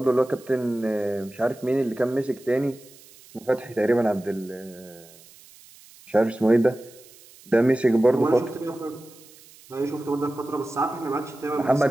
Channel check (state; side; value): noise; right; hiss, 24 dB below the sound